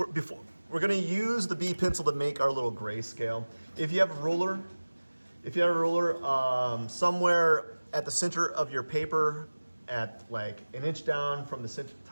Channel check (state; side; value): inverted; both; correlation -1.00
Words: going to use the B pencil to make our little grayscale. If you have a ruler, somewhere at the center of your paper, at like an inch down from the